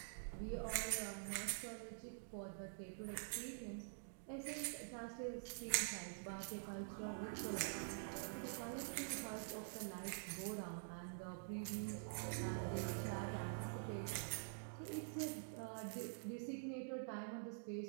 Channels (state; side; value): silent; left; digital silence